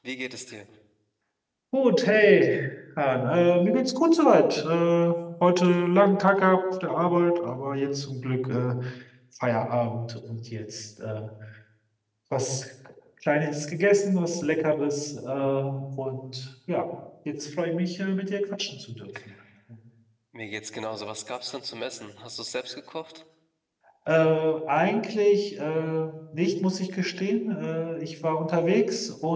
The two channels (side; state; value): both; identical; correlation 1.00